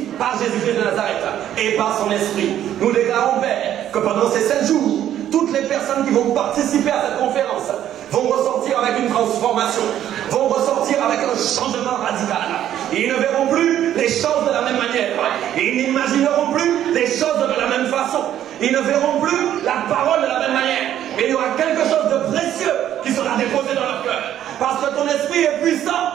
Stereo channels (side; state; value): left; quieter; 11.2 dB